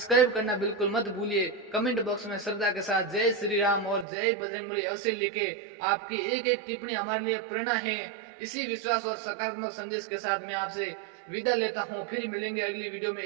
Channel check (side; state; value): left; drops out; at 4.0 s